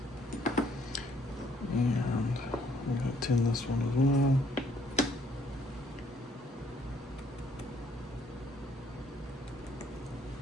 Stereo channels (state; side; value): normal; both; correlation 0.66